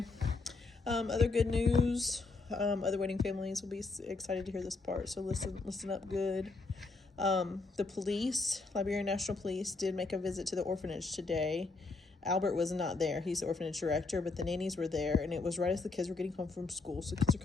Other good news, other waiting families will be excited to hear this part, so listen up good. The police, Liberian National Police, did make a visit to the orphanage today. Albert was not there. He's the orphanage director, but the nannies were there, and it was right as the kids were getting home from school. So kids are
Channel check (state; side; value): quieter; right; 3.8 dB